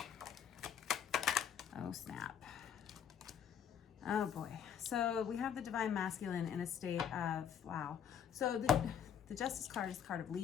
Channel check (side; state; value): right; quieter; 8.3 dB